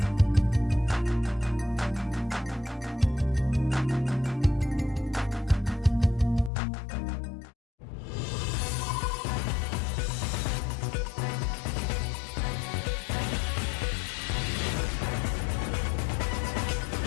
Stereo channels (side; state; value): right; drops out; at 6.5 s